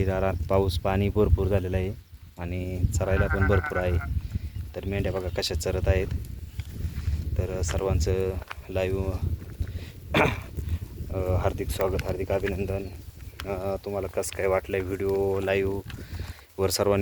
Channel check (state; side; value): identical; both; correlation 1.00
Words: पाऊस पाणी भरपूर झालेलं आहे आणि चरायला पण भरपूर आहे. तर मेंढ्या बघा कशा चरत आहेत. तर सर्वांचं लाईव्ह हार्दिक स्वागत, हार्दिक अभिनंदन. तुम्हाला कसं काय वाटलं आहे व्हिडिओ लाईव्हवर